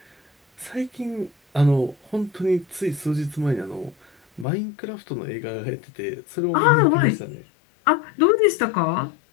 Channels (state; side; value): drops out; right; at 4.5 s